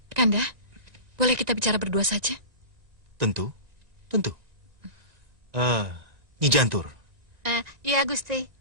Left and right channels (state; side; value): late; left; 1.9 ms